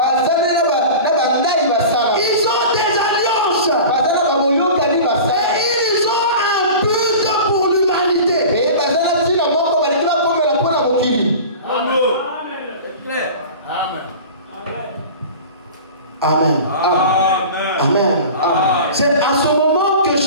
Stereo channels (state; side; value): inverted; both; correlation -0.36